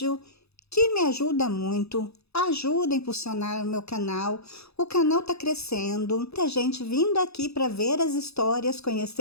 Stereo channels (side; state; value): right; late; 0.79 ms